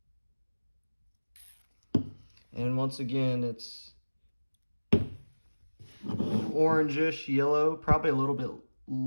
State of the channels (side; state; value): both; inverted; correlation -1.00